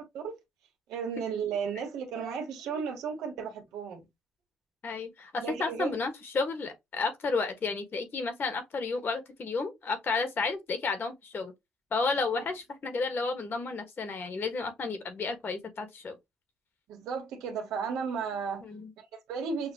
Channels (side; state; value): both; normal; correlation 0.62